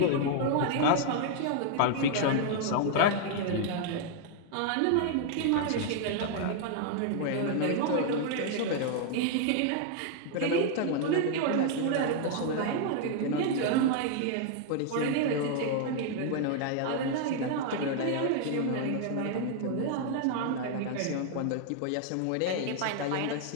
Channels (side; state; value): both; different; correlation 0.00